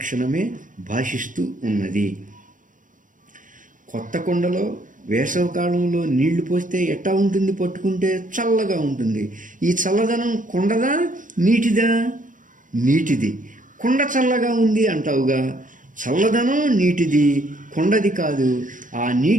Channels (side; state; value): left; late; 0.38 ms